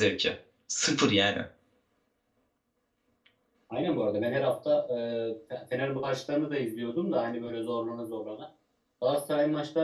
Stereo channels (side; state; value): both; identical; correlation 1.00